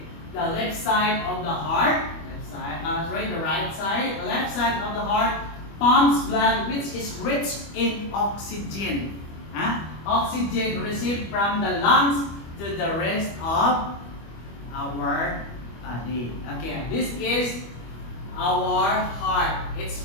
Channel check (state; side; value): late; right; 25 ms